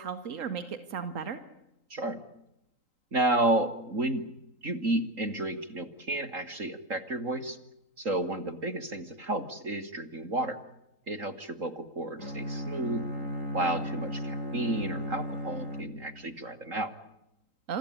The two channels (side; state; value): left; late; 3.8 ms